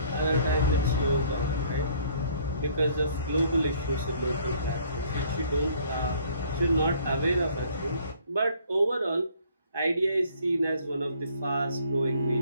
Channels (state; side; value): inverted; both; correlation -0.59